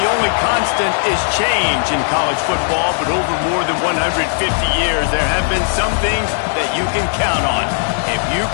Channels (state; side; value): silent; right; digital silence